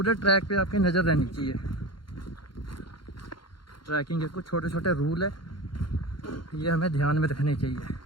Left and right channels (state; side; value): late; right; 0.72 ms